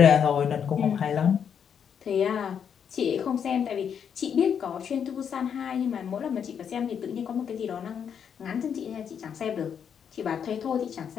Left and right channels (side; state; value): right; quieter; 7.8 dB